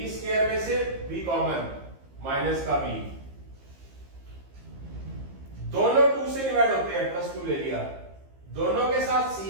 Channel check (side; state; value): left; late; 15 ms